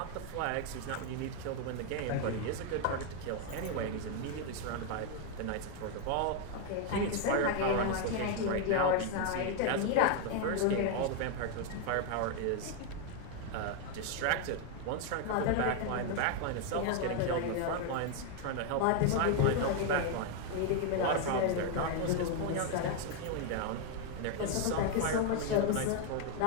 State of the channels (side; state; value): both; different; correlation 0.00